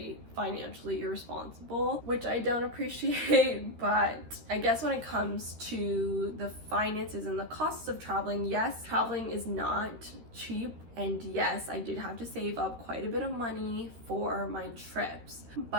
financially irresponsible, which I don't appreciate. But I guess when it comes to the finances and the costs of traveling, yes, traveling is not cheap. And yes, I did have to save up quite a bit of money for my trips.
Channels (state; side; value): late; left; 13 ms